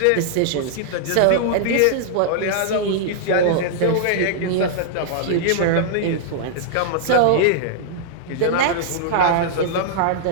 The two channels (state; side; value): different; both; correlation -0.01